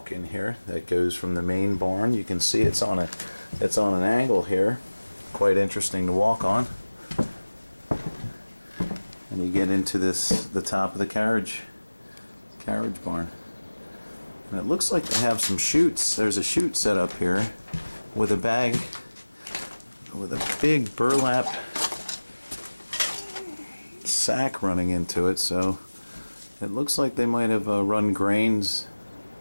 in here that goes from the main barn. You can see it's on an angle here, quite interesting to walk on. And you get into the top of the carriage barn. And it looks like they have some chutes. There's a chute set up here with a bag with a big burlap sack running into it, so it looks like they might have run grains.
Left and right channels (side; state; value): both; inverted; correlation -1.00